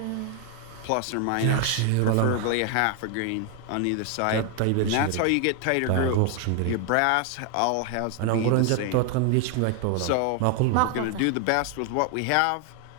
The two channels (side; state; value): both; different; correlation 0.00